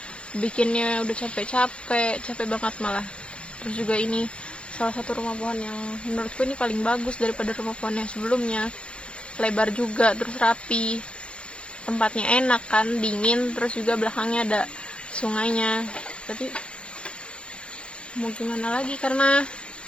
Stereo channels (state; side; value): late; right; 0.057 ms